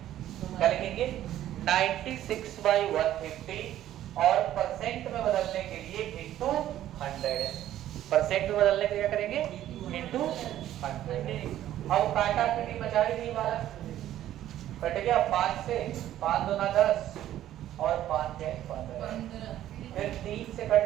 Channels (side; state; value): left; quieter; 12.6 dB